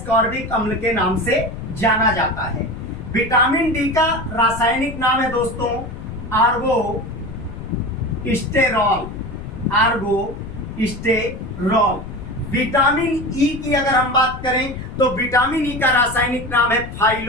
अम्ल के नाम से जाना जाता है। विटामिन डी का रासायनिक नाम है दोस्तों आर्गोस्टेरॉल। आर्गोस्टेरॉल। विटामिन ई की अगर हम बात करें तो विटामिन ई का रासायनिक नाम है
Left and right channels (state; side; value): noise; left; rumble, 11 dB below the sound